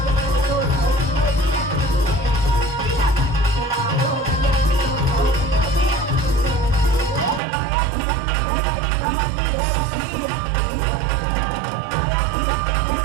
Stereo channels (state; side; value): drops out; left; at 7.4 s